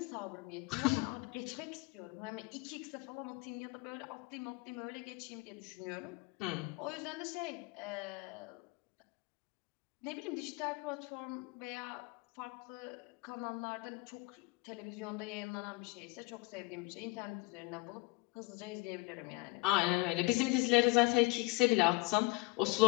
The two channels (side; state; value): right; quieter; 25.3 dB